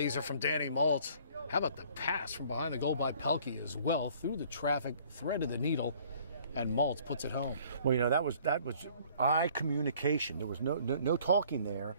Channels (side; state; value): both; inverted; correlation -0.56